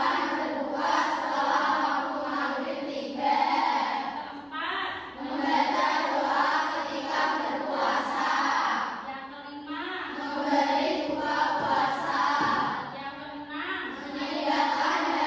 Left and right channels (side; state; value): both; identical; correlation 1.00